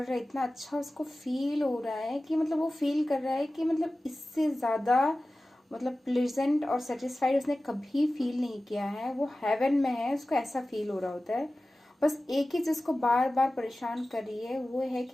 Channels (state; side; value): normal; both; correlation 0.96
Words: हैं, इतना अच्छा उसको फील हो रहा है कि मतलब वो फील कर रहा है कि मतलब इससे ज़्यादा मतलब प्लेजेंट और सेटिस्फाइड उसने कभी फील नहीं किया है। वो हेवन में है, उसको ऐसा फील हो रहा होता है। बस एक ही चीज़ को बार बार परेशान कर रही है, वो है